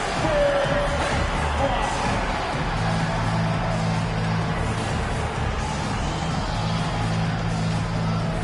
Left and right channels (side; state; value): both; identical; correlation 1.00